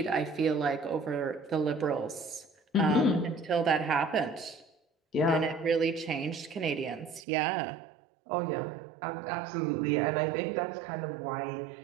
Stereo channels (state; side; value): drops out; left; at 7.2 s